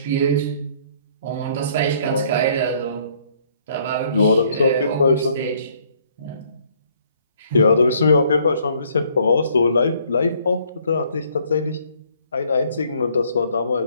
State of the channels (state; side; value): inverted; both; correlation -0.63